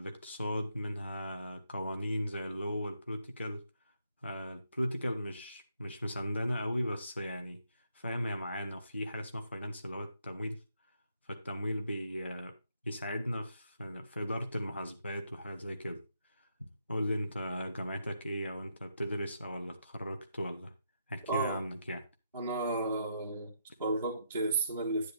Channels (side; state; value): both; inverted; correlation -0.77